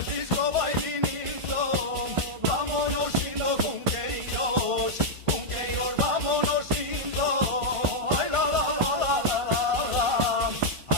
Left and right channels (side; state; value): left; late; 1.5 ms